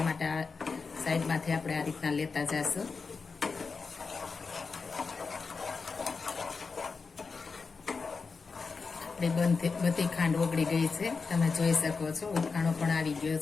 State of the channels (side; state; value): right; quieter; 4.7 dB